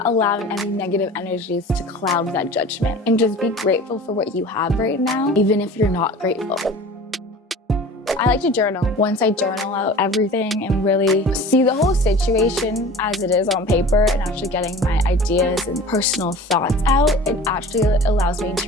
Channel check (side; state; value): both; normal; correlation 0.40